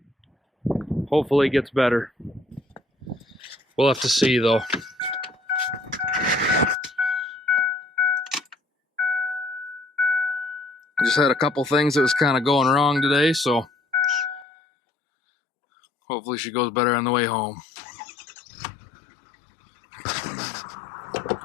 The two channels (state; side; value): drops out; right; at 14.5 s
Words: Hopefully it gets better. We'll have to see, though. Just had a couple things that was kind of going wrong today, so hopefully she goes better on the way home.